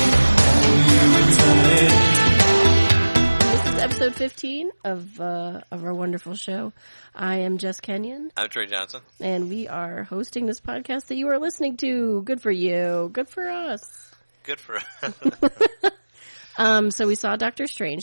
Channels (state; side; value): inverted; both; correlation -1.00